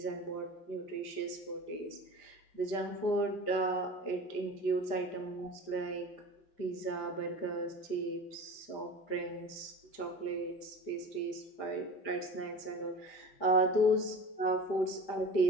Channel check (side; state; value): right; late; 5.1 ms